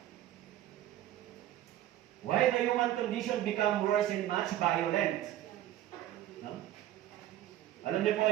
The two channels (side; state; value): left; quieter; 13.0 dB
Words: Why the human condition become worse and much violent? No? Alam niyo po